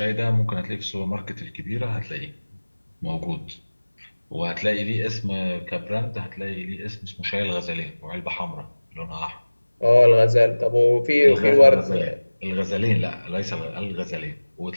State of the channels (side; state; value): both; inverted; correlation -1.00